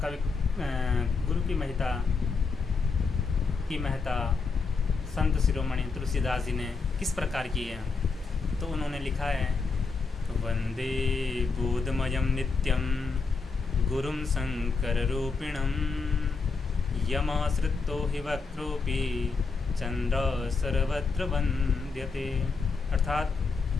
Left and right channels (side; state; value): right; quieter; 4.5 dB